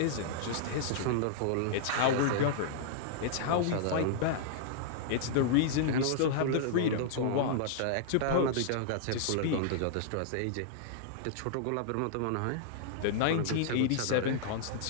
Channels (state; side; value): different; both; correlation -0.01